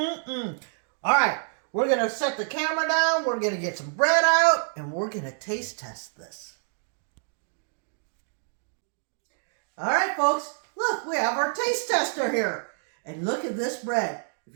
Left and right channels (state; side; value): silent; left; digital silence